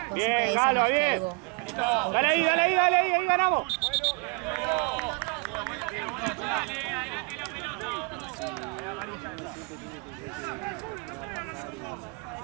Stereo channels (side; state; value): left; quieter; 32.6 dB